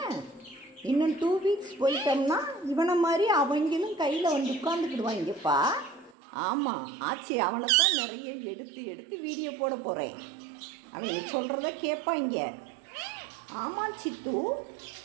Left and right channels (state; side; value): drops out; left; at 6.1 s